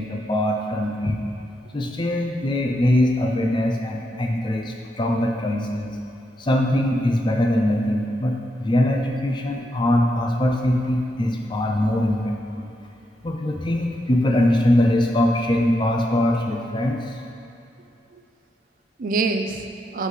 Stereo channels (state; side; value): normal; both; correlation 0.82